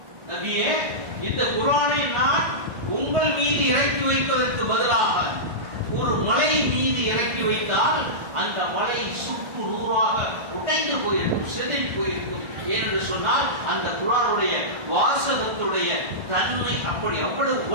நபியே இந்த குர்ஆனை நான் உங்கள் மீது இறக்கி வைப்பதற்கு பதிலாக ஒரு மலை மீது இறக்கி வைத்தால் அந்த மலை சுக்கு நூறாக உடைந்து போயிருக்கும், சிதறி போயிருக்கும். ஏனென்று சொன்னால் அந்த குர்ஆனுடைய வாசகத்துடைய தன்மை அப்படி அவ்வளவு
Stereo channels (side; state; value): left; late; 1.4 ms